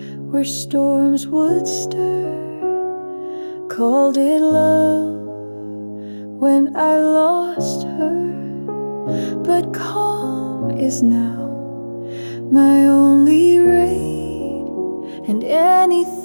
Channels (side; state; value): both; inverted; correlation -1.00